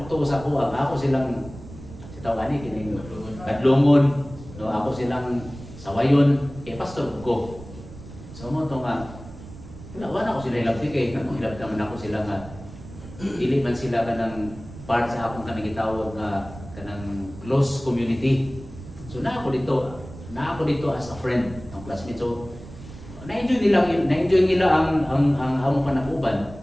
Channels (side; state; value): right; noise; rumble, 15 dB below the sound